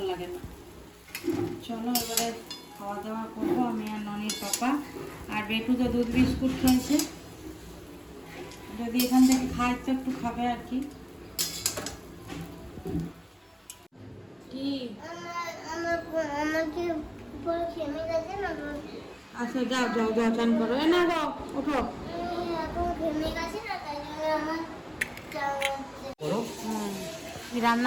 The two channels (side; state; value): both; identical; correlation 1.00